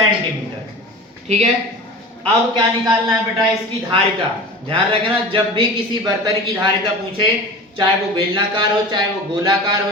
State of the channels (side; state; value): both; normal; correlation 0.35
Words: ठीक है, अब क्या निकालना है बेटा, इसकी धारिता। ध्यान रखना, जब भी किसी बर्तन की धारिता पूछे, चाहे वो बेलनाकार हो, चाहे वो गोलाकार हो,